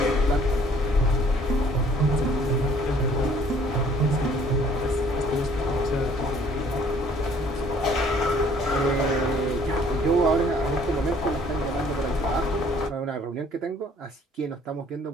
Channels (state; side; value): normal; both; correlation 0.58